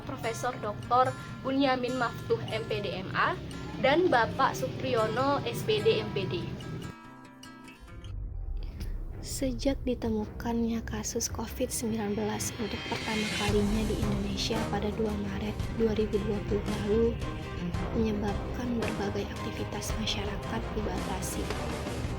Profesor Dr. Bunyamin Maftuh MPD MA dan Bapak Supriyono SPD MPD. Sejak ditemukannya kasus COVID-19 untuk pertama kalinya di Indonesia pada 2 Maret 2020 lalu, menyebabkan berbagai aktivitas masyarakat dibatasi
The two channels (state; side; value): identical; both; correlation 1.00